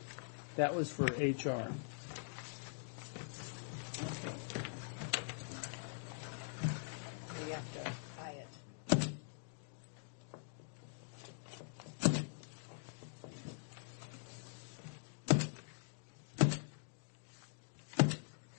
That was for HR. So you have to buy it.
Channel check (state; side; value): silent; right; digital silence